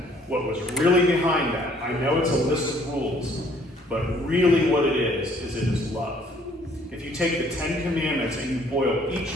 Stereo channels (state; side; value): normal; both; correlation 0.61